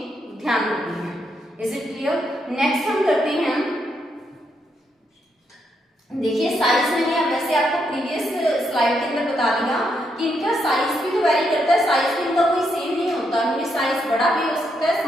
ध्यान रखनी है। Is it clear? नेक्स्ट हम करते हैं, देखिए साइज मैंने वैसे आपको प्रीवियस स्लाइड के अंदर बता दिया कि इनका साइज भी तो वेरी करता है, साइज भी इनका कोई सेम नहीं होता, इनमें साइज बड़ा भी हो सकता है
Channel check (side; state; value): both; normal; correlation 0.79